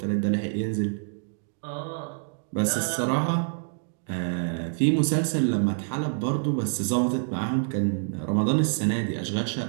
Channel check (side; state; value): left; silent; digital silence